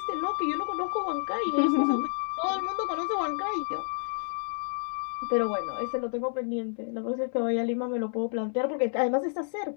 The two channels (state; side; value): silent; right; digital silence